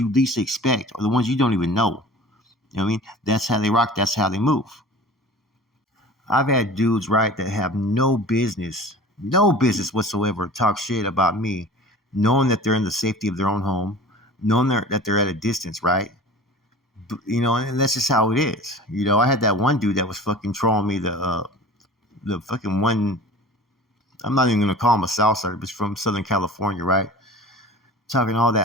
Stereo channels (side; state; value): both; normal; correlation 0.40